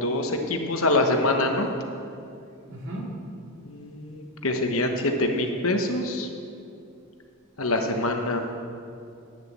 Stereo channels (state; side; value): normal; both; correlation 0.02